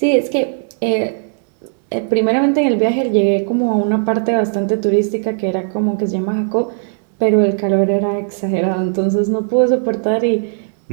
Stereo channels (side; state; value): left; silent; digital silence